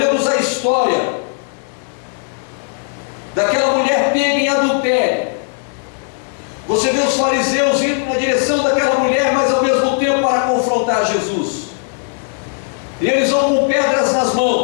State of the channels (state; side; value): silent; right; digital silence